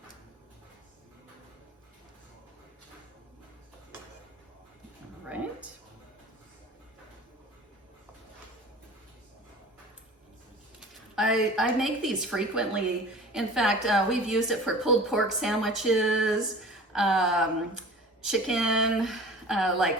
Right. I make these frequently. In fact, we've used it for pulled pork sandwiches, chicken,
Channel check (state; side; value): normal; both; correlation 0.41